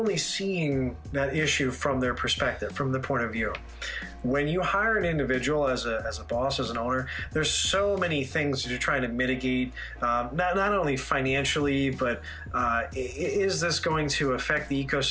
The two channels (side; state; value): both; identical; correlation 1.00